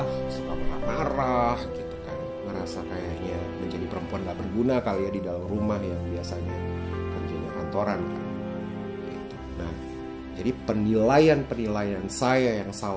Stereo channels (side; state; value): both; identical; correlation 1.00